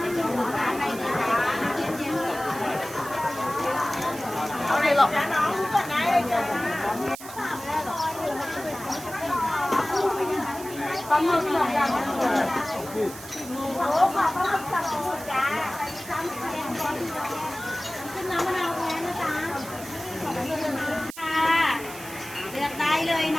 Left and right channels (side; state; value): right; noise; hiss, 14 dB below the sound